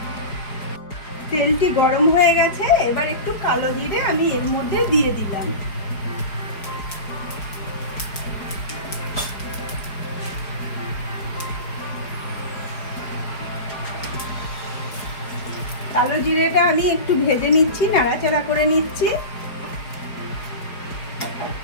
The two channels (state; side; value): late; right; 4.8 ms